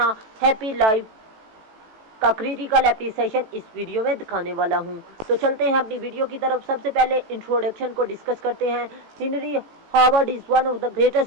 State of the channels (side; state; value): left; late; 18 ms